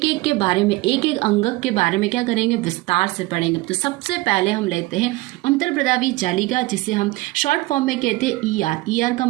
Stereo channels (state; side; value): quieter; left; 20.2 dB